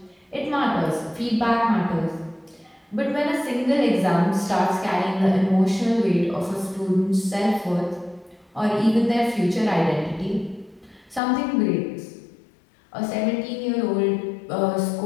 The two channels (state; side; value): drops out; right; at 11.2 s